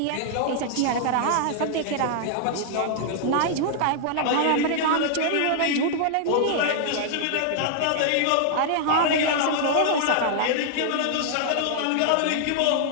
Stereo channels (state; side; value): different; both; correlation -0.01